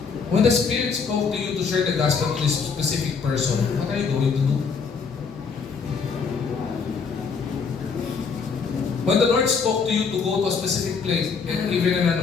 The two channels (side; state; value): right; quieter; 5.5 dB